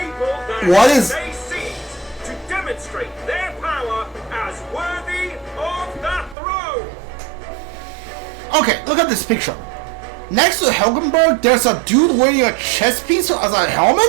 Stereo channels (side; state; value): left; drops out; at 6.4 s